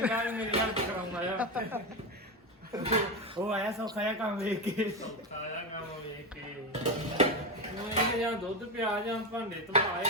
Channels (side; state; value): both; normal; correlation 0.15